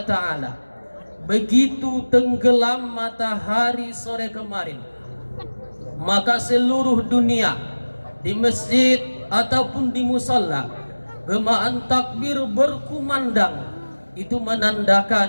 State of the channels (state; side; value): inverted; both; correlation -1.00